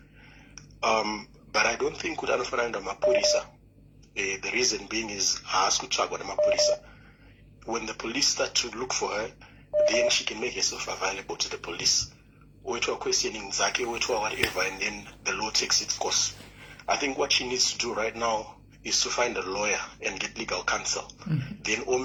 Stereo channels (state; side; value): identical; both; correlation 1.00